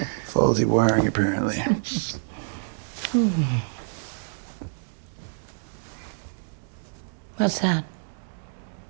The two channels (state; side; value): silent; left; digital silence